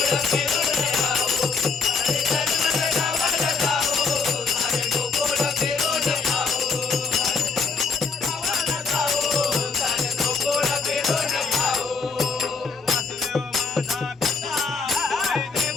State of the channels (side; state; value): right; quieter; 4.8 dB